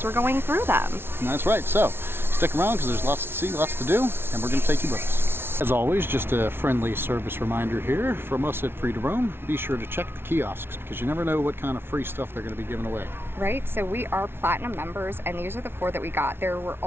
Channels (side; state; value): left; late; 0.11 ms